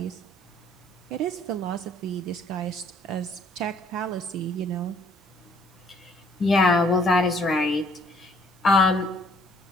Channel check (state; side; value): normal; both; correlation 0.62